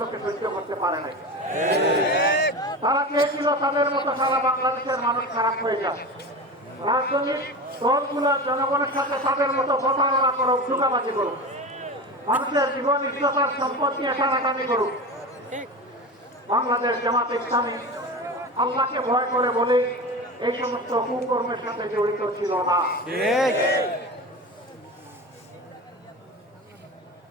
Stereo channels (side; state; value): both; normal; correlation 0.28